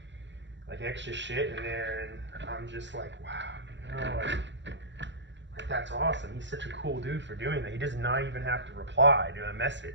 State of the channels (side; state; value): left; late; 0.53 ms